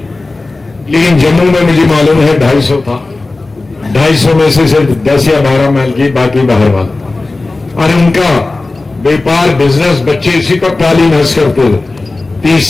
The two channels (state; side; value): quieter; right; 3.3 dB